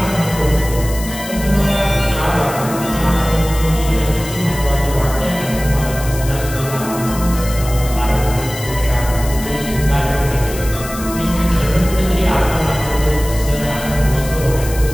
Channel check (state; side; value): noise; left; hiss, 12 dB below the sound